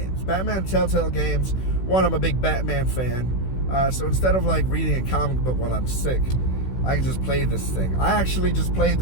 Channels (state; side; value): late; right; 16 ms